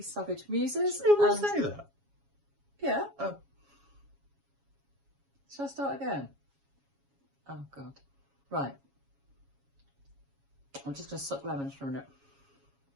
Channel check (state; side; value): late; left; 7.2 ms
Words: Savage Muses. You will say that? Yeah. Oh. Shall I start again? Oh, God. Right. I'm just going to suck lemons for a minute.